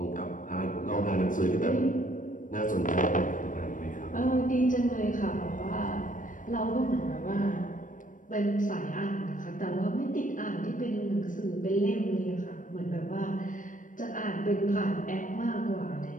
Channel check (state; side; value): late; right; 0.38 ms